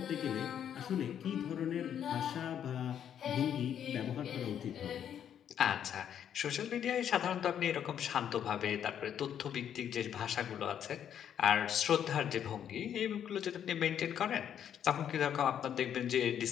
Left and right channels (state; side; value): quieter; right; 9.3 dB